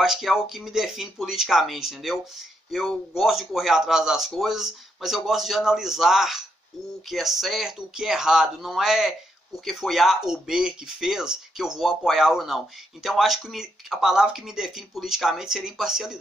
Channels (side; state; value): both; normal; correlation 0.78